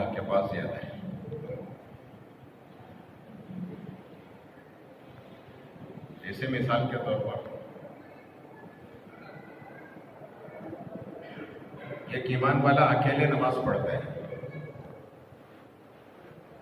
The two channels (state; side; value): identical; both; correlation 1.00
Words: کے پاس زیادہ ہے۔ جیسے مثال کے طور پر ایک ایمان والا اکیلے نماز پڑھتا ہے